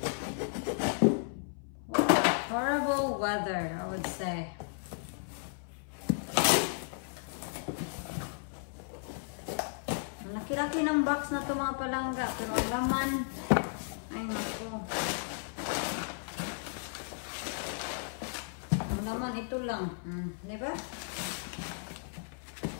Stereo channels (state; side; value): silent; right; 55 dB below the other